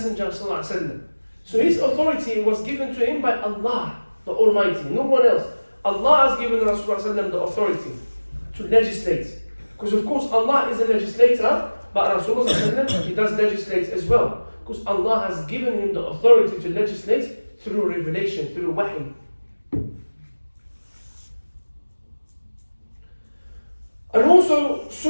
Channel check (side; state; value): both; inverted; correlation -1.00